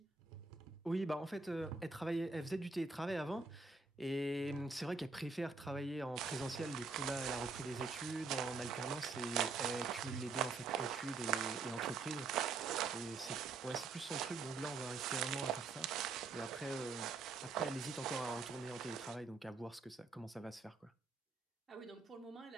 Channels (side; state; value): left; quieter; 4.2 dB